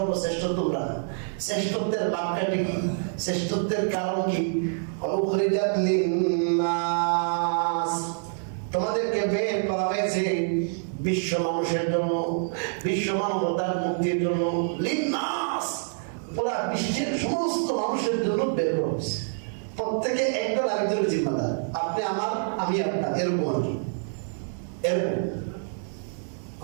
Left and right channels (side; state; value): left; silent; digital silence